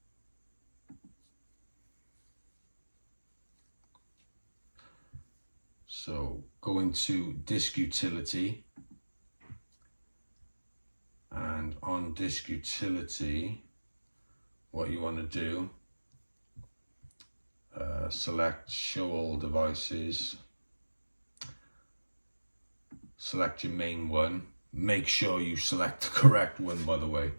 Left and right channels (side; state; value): both; inverted; correlation -1.00